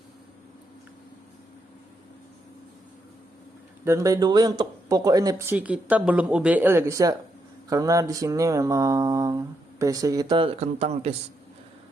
Dan by the way untuk Poco NFC kita belum UBL ya guys ya. Karena di sini memang PC kita kentang guys.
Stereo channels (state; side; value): normal; both; correlation 0.80